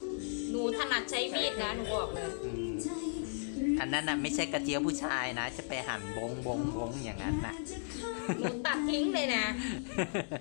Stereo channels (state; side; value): silent; right; digital silence